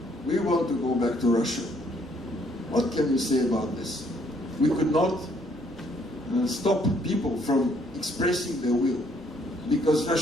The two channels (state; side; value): normal; both; correlation 0.67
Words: we want to go back to Russia. What can you say about this? We could not stop people from expressing their will, because